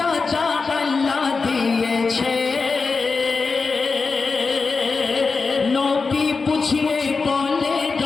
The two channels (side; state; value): right; quieter; 4.4 dB